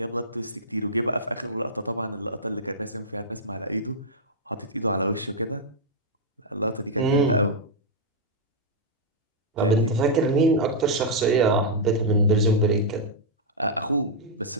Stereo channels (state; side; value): normal; both; correlation -0.06